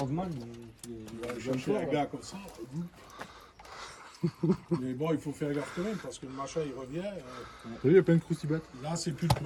Je fais un gars comme ça. Mais bon, il faut faire gaffe quand même parce que le machin il revient. Il y a plein de croustibates. Là, c'est plus le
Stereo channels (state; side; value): identical; both; correlation 1.00